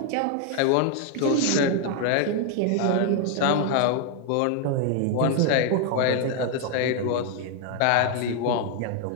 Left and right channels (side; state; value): both; different; correlation 0.00